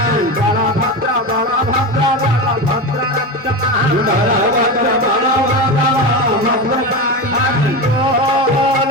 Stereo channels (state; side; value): normal; both; correlation 0.20